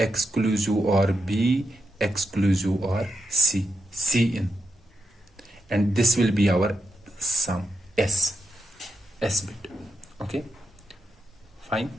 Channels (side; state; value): both; normal; correlation 0.85